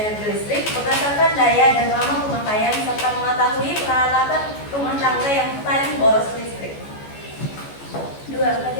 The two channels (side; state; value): right; late; 14 ms